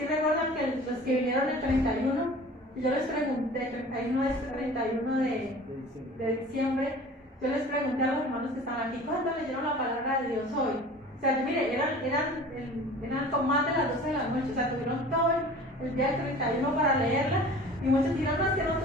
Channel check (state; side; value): normal; both; correlation 0.43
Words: recuerdan que los que vinieron el 31, yo les pregunté, el 31 de diciembre, yo les pregunté a los hermanos que estaban aquí, ¿cuándo leyeron la palabra de Dios hoy? O sea, mire, eran como más de las 12 de la noche, o sea, tuvieron todo el día del 31 para leerla, y muchos dirán, no, es que no